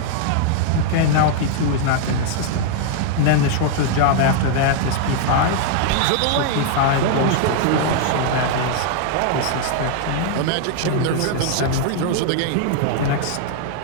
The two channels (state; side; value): different; both; correlation 0.00